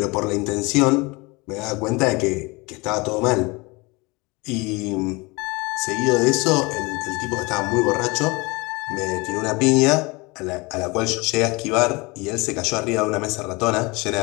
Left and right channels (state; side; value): quieter; right; 25.5 dB